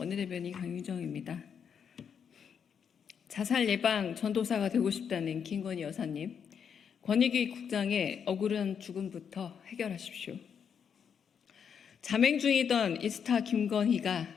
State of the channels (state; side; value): quieter; right; 7.3 dB